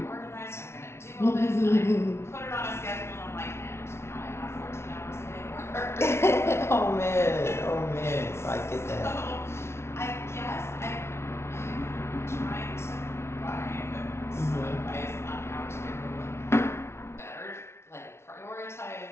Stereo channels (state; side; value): late; right; 0.13 ms